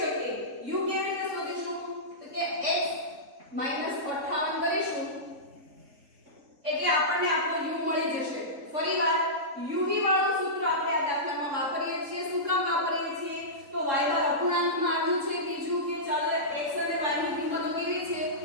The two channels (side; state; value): left; late; 3.7 ms